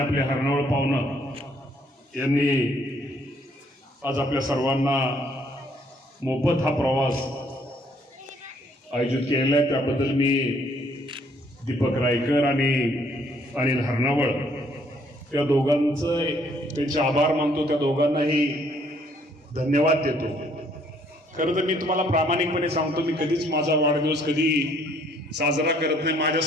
आपले हरणावळ पाहुणं यांनी आज आपल्या सर्वांना मोफत हा प्रवास आयोजित केलेला आहे. त्याबद्दल मी दीपक रायकर आणि अनिल हरणावळ या दोघांचं त्यांचे आभार मानतो. त्या दोघांनाही धन्यवाद देतो. खरं तर मी तुम्हाला प्रामाणिकपणे सांगतो, मी कधीच माझा वाढदिवस कधी साजरा करत नाही.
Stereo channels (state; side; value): normal; both; correlation 0.65